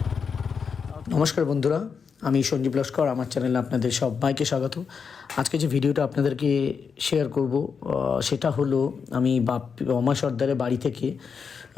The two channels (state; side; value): quieter; right; 6.0 dB